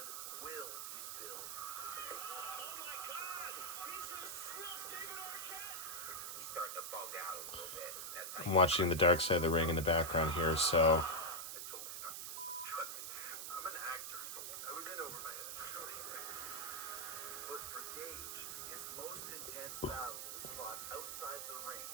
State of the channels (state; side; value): noise; right; hiss, 5 dB below the sound